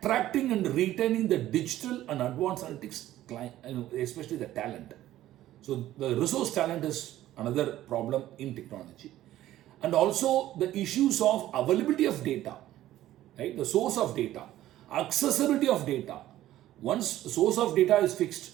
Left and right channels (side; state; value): left; quieter; 14.0 dB